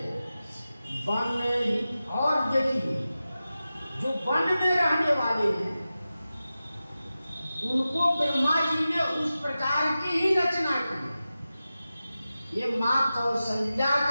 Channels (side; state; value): both; inverted; correlation -0.94